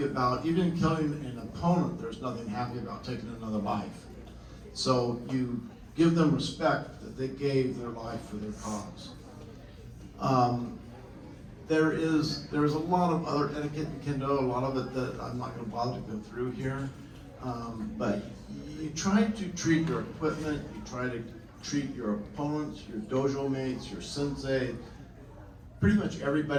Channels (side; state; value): both; identical; correlation 1.00